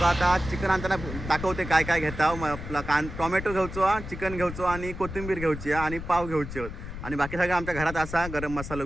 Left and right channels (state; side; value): noise; left; rumble, 9 dB below the sound